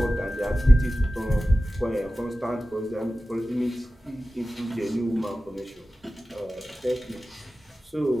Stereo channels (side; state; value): both; normal; correlation 0.95